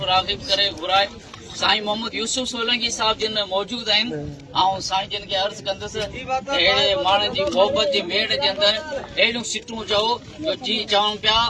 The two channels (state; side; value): identical; both; correlation 1.00